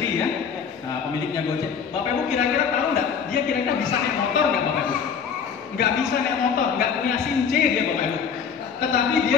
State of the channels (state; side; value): quieter; right; 6.8 dB